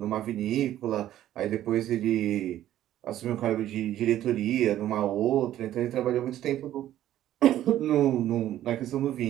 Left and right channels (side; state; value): left; quieter; 12.7 dB